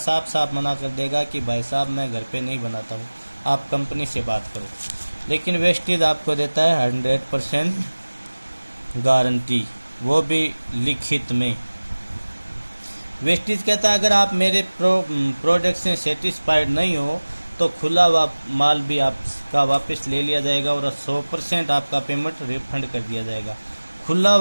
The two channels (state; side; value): inverted; both; correlation -1.00